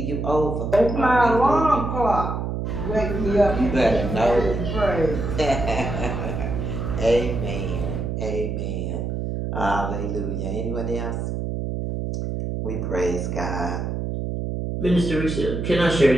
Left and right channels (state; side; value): noise; right; hum, 3 dB below the sound